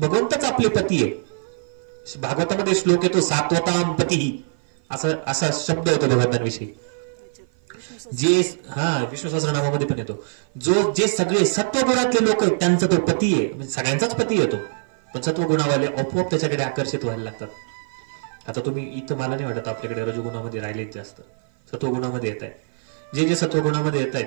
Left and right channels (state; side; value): silent; left; 55 dB below the other